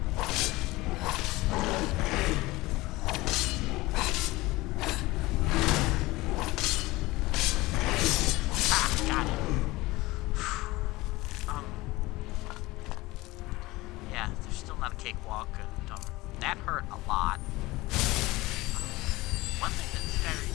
Cakewalk, and that hurt a lot. One thing that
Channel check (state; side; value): quieter; right; 20.3 dB